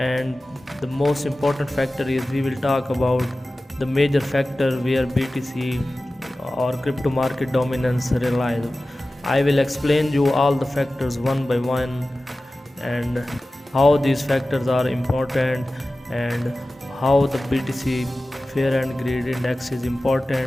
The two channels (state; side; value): normal; both; correlation 0.96